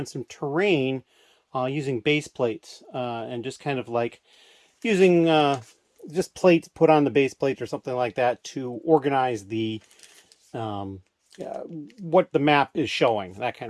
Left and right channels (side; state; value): both; identical; correlation 1.00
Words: some terrain using base plates and just kind of like using just plates put on the base plates or something like that to organize the what the map is showing, that